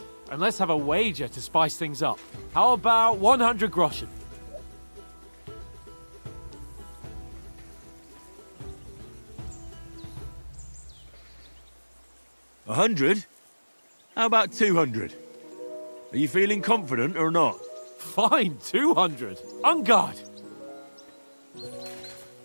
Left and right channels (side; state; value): both; inverted; correlation -1.00